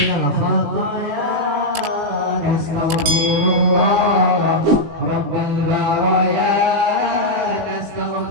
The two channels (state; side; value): late; left; 19 ms